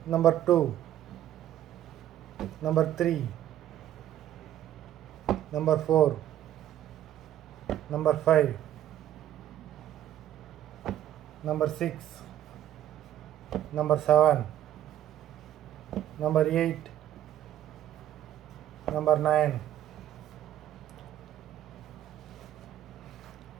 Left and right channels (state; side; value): quieter; left; 12.0 dB